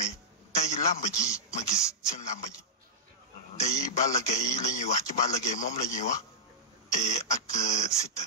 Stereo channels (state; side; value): normal; both; correlation -0.10